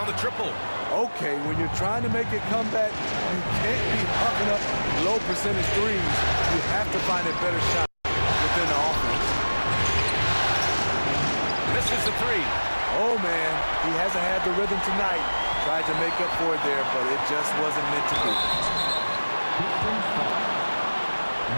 the triple. Okay, when you're trying to make a comeback, you can't be hucking up low percentage threes. You have to find a better shot within the offense. Misses the three. Oh, man, he hasn't had the rhythm tonight. Tried to make up for it there, but it just wasn't meant to be.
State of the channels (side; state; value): both; inverted; correlation -1.00